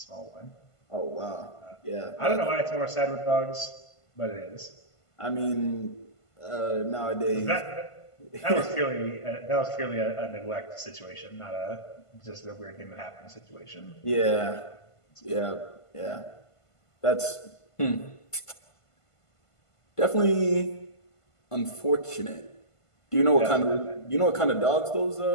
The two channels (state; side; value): late; right; 1.5 ms